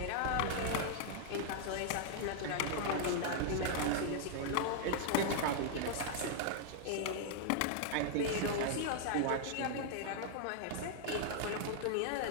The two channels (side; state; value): both; different; correlation 0.00